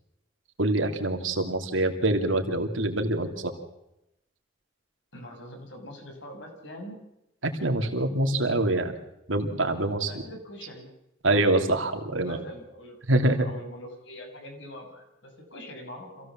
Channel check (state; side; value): normal; both; correlation 0.14